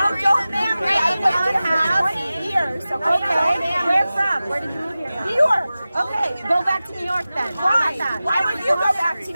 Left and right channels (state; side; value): inverted; both; correlation -0.96